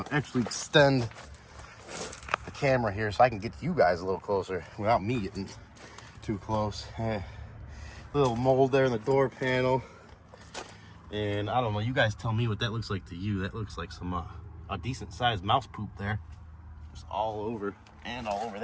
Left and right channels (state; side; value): identical; both; correlation 1.00